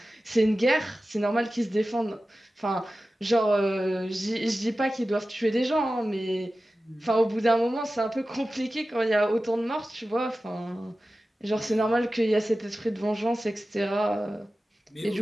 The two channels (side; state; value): both; normal; correlation 0.95